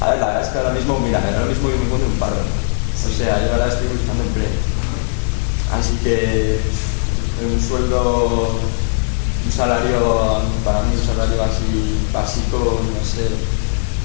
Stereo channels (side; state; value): right; silent; 67 dB below the other